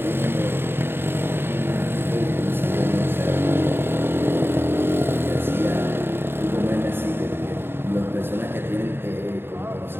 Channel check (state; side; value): late; left; 0.11 ms